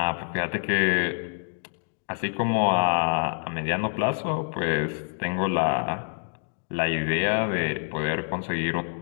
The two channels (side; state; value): right; silent; digital silence